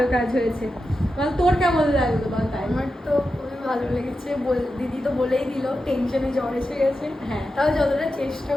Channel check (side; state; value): both; normal; correlation 0.90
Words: কাজ হয়েছে। বল তোর কেমন লাগলো বল। তাই আমার তো খুবই ভালো লেগেছে। দিদি তো বলেই দিল টেনশনে জ্বর এসে গেছে, হ্যাঁ। তাও যতটা চেষ্টা